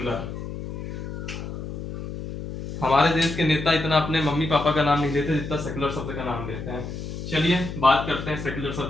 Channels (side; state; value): left; noise; hum, 8 dB below the sound